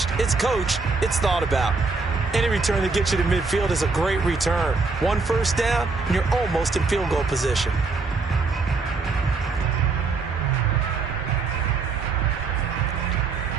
it's coached, it's thought about. Any return that gets you to midfield is a great return. One first down, and you're almost in field goal position.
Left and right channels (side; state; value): left; quieter; 4.2 dB